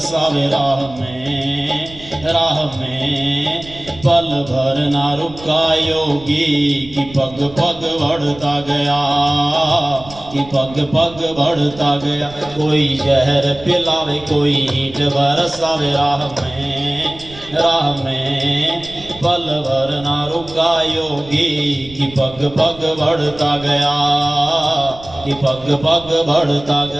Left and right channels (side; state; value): right; noise; rumble, 18 dB below the sound